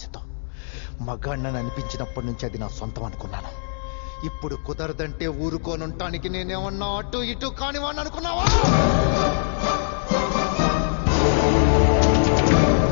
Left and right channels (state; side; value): silent; right; digital silence